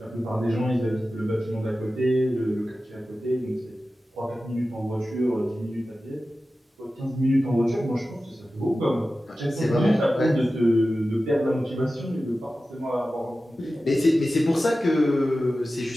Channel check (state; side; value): normal; both; correlation 0.94